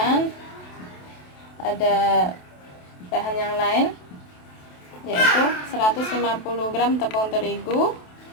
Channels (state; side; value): late; right; 28 ms